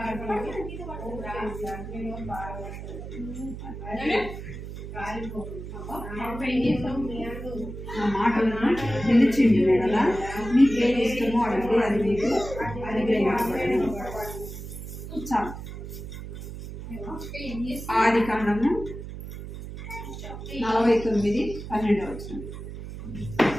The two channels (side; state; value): right; noise; hum, 10 dB below the sound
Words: నా మాటలను నిలిచింది కదా, మీకేం ఇష్టమో అడిగి అది మీకు అనుగ్రహించబడను. చాలు. ఆది కాండము 49:12.